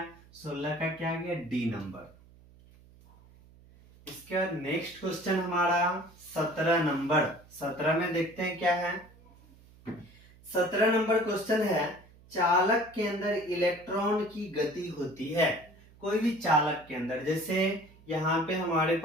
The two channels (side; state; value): right; noise; hum, 25 dB below the sound